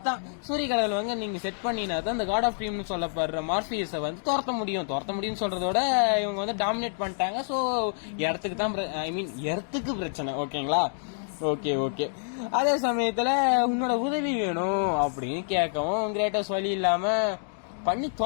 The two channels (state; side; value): silent; right; digital silence